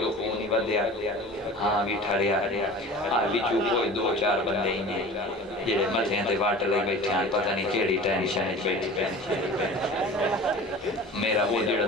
خون ہی بدیا ہاں بھی ٹھڑیا بھی چوپو 2-4 بندے ہی ہیں جڑے متھیاں تے واٹ لے بیٹھے ہیں پتہ نہیں کیڑی ٹینشن بیٹھی میرا وہ جڑا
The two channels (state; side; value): normal; both; correlation 0.39